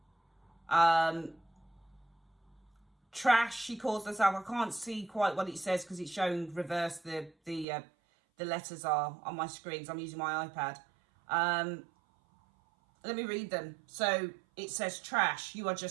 Trash, she calls herself. I can't see quite what it says because it's showing reverse. The letters are on my screen, so I'm using my iPad. Let me read them. So it says, trash, you are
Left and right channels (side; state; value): left; drops out; at 7.7 s